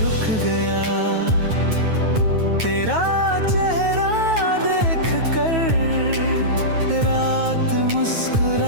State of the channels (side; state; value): left; late; 9.2 ms